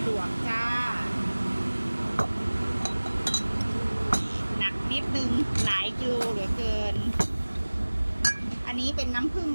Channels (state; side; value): inverted; both; correlation -1.00